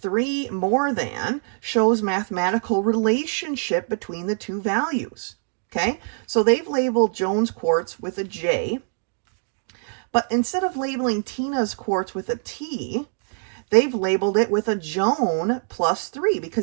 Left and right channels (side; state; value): left; silent; digital silence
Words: 3 more than shows mathematical relationship between the two values. Okay, so they've labeled Joan's quarts with a J, but instead of labeling Tina's quarts with a T, they've labeled it with a Joan plus 3,